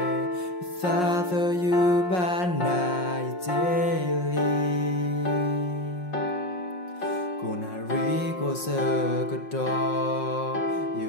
xa thơ như ban nai daily cô nà rí cô sơ cơ đo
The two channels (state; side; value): late; right; 5.5 ms